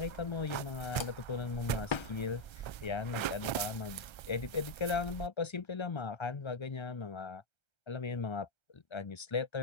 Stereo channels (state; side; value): late; right; 1.3 ms